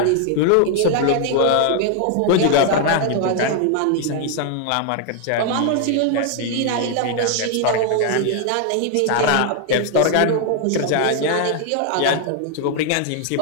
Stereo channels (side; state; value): both; different; correlation 0.00